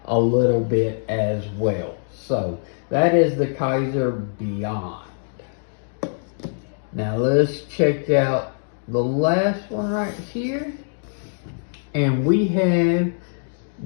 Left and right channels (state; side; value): silent; right; digital silence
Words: a little bit as well. So that is the Kizer Beyond. Now let's check out the last one right here, and we have